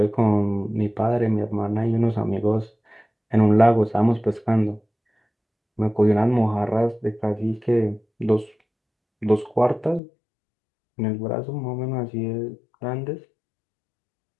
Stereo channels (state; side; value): drops out; right; at 10.0 s